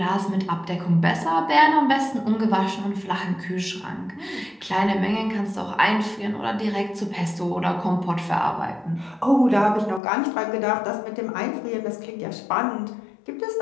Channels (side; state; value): right; drops out; at 10.0 s